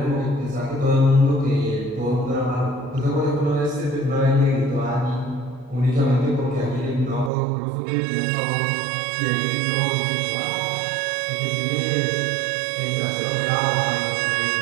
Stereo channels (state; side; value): drops out; left; at 7.3 s